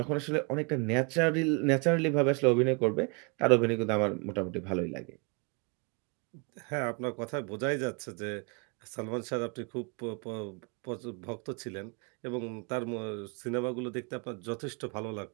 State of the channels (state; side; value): quieter; left; 32.6 dB